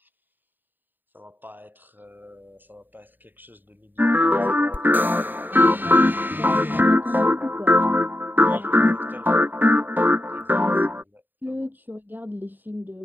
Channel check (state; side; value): late; left; 0.091 ms